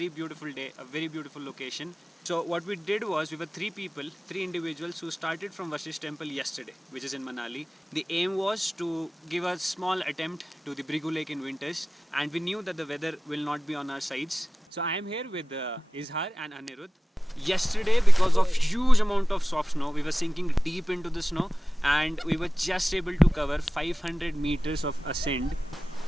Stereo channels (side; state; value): both; normal; correlation 0.97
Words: beautiful day, a very beautiful location. So what we did was, we were three individuals who started from Vasishtha temple yesterday, which is in Manali. The aim was to give a small attempt to the Bhrigu Lake in winters, and we knew that the weather will not be on our sides. So I am here with Izhar and Anirudh. Yesterday, because of huge amount of soft snow, we were sinking deep into the snow and we were just able to cover 500 meters of ascent